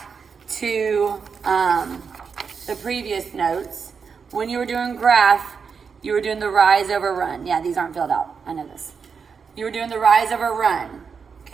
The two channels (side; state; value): left; quieter; 5.9 dB